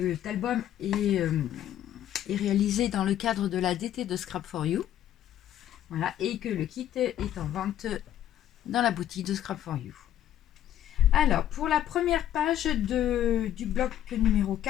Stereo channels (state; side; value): quieter; right; 11.5 dB